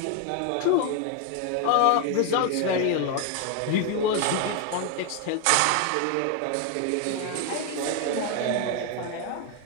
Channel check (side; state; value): both; different; correlation 0.01